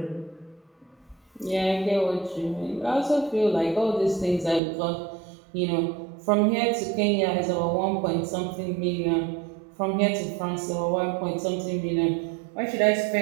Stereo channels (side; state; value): left; drops out; at 4.6 s